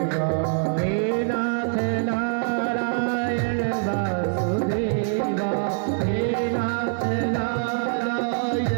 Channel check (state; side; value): silent; left; 62 dB below the other